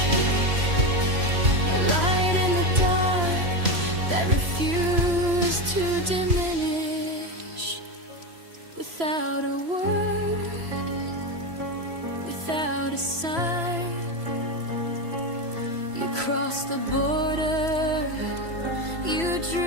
A light in the dark that refused to diminish. Without a word, without a sign, you crossed the border, you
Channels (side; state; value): left; late; 3.0 ms